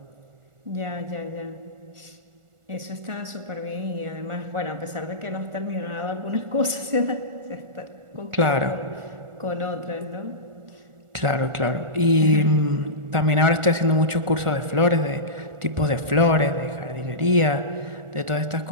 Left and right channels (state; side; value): late; left; 1.4 ms